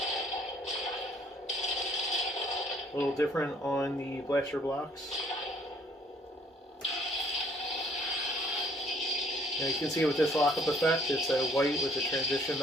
A little different on the blaster blocks. Now you can see with this Lockup effect, it's a white with a transition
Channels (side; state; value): both; normal; correlation 0.61